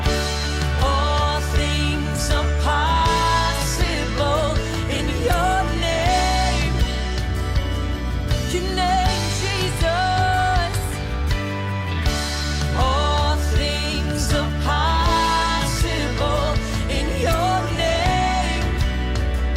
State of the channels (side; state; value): both; identical; correlation 1.00